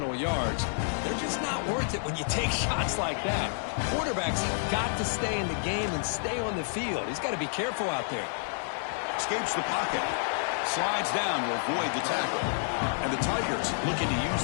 yards. They're just not worth it when you take shots like that. Quarterbacks have got to stay in the game and stay on the field. He's got to be careful out there. Escapes the pocket. Slides down to avoid the tackle. And the Tigers looking to use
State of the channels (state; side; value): silent; right; digital silence